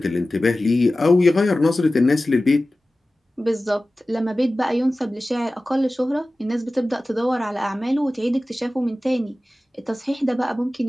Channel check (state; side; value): normal; both; correlation 0.96